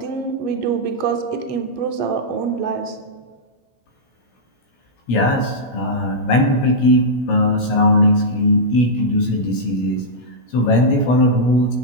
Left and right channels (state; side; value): late; right; 16 ms